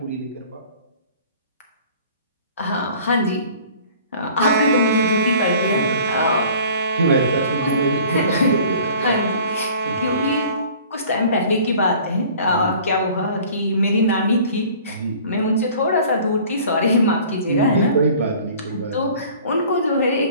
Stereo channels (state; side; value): inverted; both; correlation -0.48